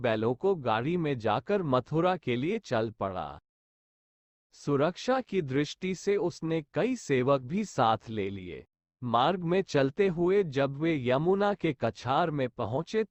को गाड़ी में जाकर मथुरा के लिए चल पड़ा। सुरक्षा की दृष्टि से उसने कई सेवक भी साथ ले लिए। मार्ग में चलते हुए जब वे यमुना के कछार में पहुंचे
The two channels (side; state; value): both; identical; correlation 1.00